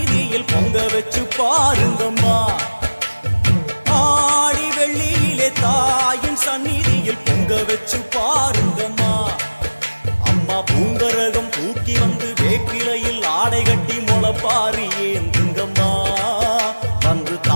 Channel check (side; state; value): both; inverted; correlation -1.00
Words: பொங்க வச்சு பாருங்கம்மா ஆடி வெள்ளியிலே தாயின் சந்நிதியில் பொங்க வச்சு பாருங்கம்மா அம்மா பூங்கரகம் தூக்கி வந்து வேப்பிலையில் ஆடை கட்டி முளப்பாரி ஏந்துங்கம்மா வந்து